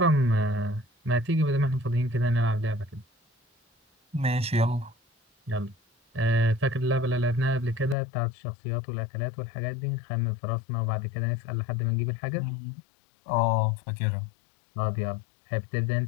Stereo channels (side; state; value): right; drops out; at 8.0 s